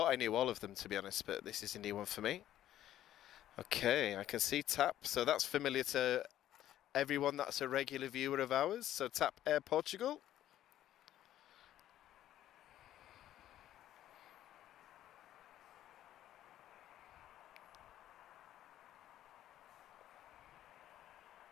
I knew all of them, to be honest, but this is a new one for me. Okay, I can see TAP, so that's familiar to everyone that's a regular viewer of ours. So TAP Air Portugal.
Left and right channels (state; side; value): quieter; right; 12.5 dB